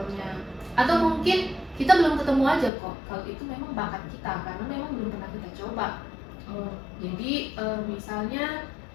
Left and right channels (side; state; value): right; drops out; at 2.7 s